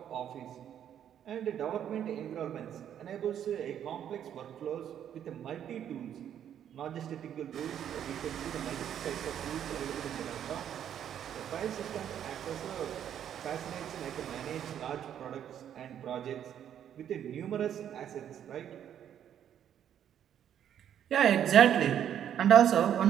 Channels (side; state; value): left; quieter; 9.7 dB